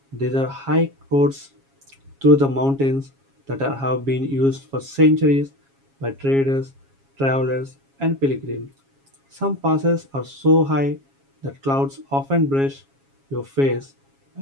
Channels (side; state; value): left; late; 7.3 ms